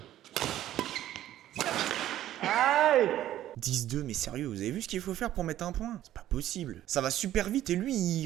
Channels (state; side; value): quieter; left; 12.9 dB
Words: Aïe! 10-2, mais sérieux, vous avez vu ce qu'il faut faire pour mettre un point? C'est pas possible. Ça va super vite et lui,